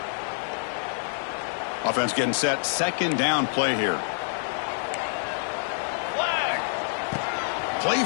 Offense getting set. Second down play here. Flag. Play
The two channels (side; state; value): right; silent; digital silence